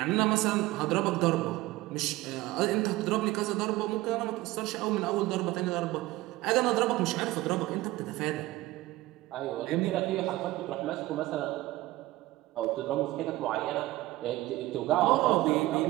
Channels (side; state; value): left; quieter; 18.0 dB